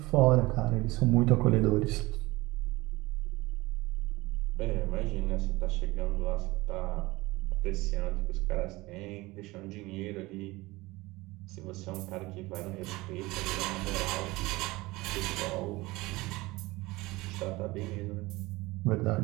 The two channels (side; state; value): left; quieter; 21.0 dB